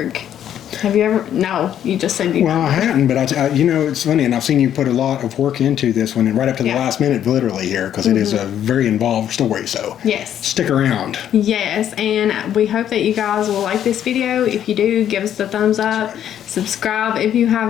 Have you ever... No, you just said you... Well, I hadn't, but it's funny, and I've seen you put a lot of work into this one, and right up to the last minute, literally here, because it is a very involved story, so... Yes. Stick around. Yes, and we hope that you guys will like this video. If you do, give us the thumbs up, subscribe if you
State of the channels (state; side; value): quieter; right; 10.3 dB